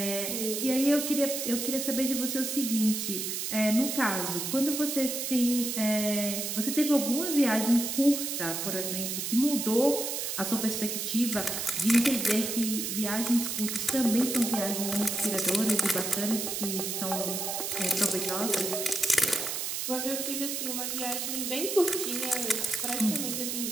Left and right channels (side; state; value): right; noise; hiss, 3 dB below the sound